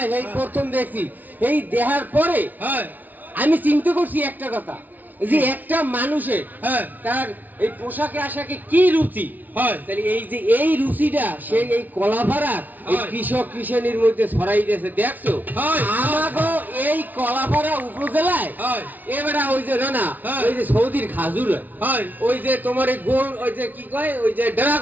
এই প্রথম দেখছি, এই দেখার পরে আমি চিন্তা করছি একটা কথা, যে একটা মানুষের তার এই পোশাকে আশাকে কি রুচি, তাহলে এই যে এই রুচিটা সে এই কলাপাড়ার এই কৃষক কৃষানির মধ্যে ছড়াই দিয়েছে। দেখছো আমাগো এই কলাপাড়া উপজেলায় এবারে ওই যে না ওই যে সৌদির খাজুর ওই যে তোমার এই গোল ওই যে কি কয় ওই যে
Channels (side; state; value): left; late; 0.080 ms